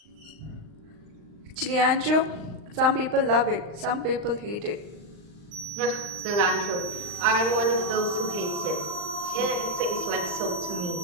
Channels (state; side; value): late; left; 39 ms